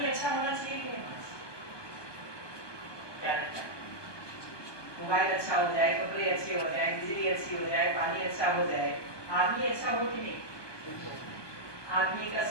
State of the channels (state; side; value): late; right; 1.2 ms